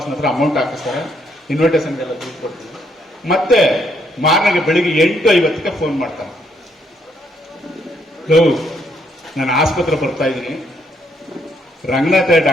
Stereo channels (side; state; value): both; normal; correlation 0.73